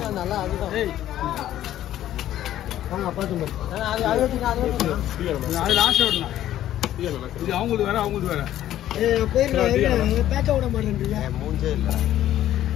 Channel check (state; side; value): quieter; right; 12.6 dB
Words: வாங்க பார்த்து அது லாஸ்ட் விடலாம். இது அவங்களுக்கு வேற அவங்களுக்கு வேற. போயிருங்க. பேச்ச விட மாட்டேன்றீங்க. மூஞ்சே இல்லை.